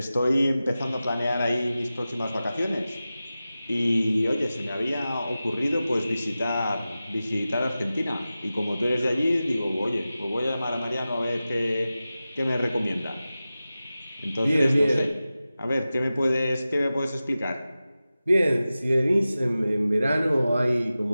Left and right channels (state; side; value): inverted; both; correlation -0.95